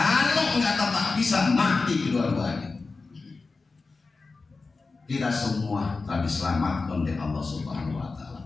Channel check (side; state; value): right; quieter; 4.0 dB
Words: nggak tetap bisa, mati kedua-duanya. Kita semua telah diselamatkan oleh Allah Subhanahu wa